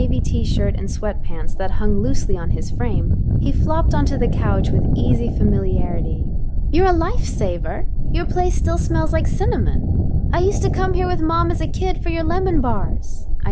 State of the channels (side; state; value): both; identical; correlation 1.00